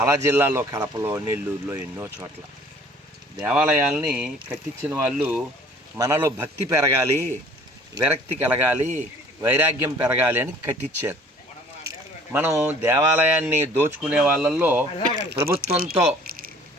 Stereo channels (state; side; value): normal; both; correlation 0.52